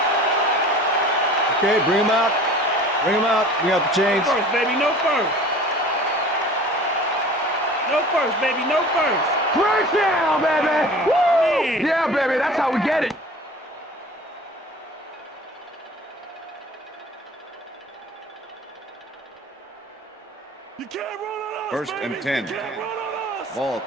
Okay, bring him out. Bring him out. Bring out the chains. No first, baby. No first. No first, baby. No first. First down, baby. Woo! Yeah, baby. That's how we get it. You can't run on us, First baby. and 10. You can't run on us. Ball at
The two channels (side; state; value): both; normal; correlation 0.44